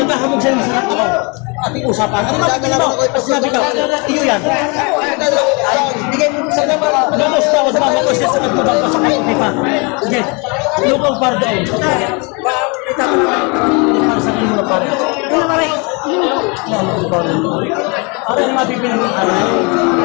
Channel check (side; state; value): right; quieter; 31.2 dB